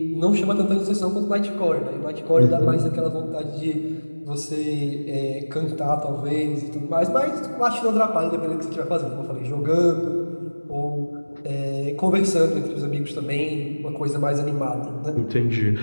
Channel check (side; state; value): both; inverted; correlation -1.00